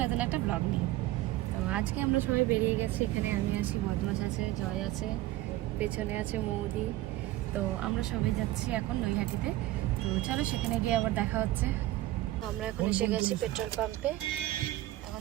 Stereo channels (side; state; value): left; quieter; 16.2 dB